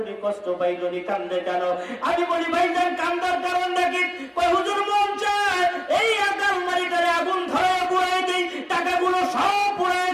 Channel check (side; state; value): both; identical; correlation 1.00